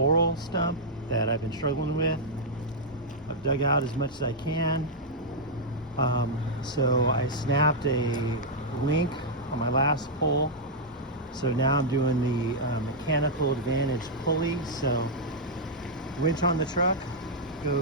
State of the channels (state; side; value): normal; both; correlation -0.05